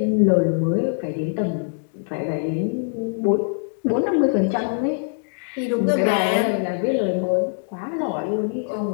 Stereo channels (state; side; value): silent; right; digital silence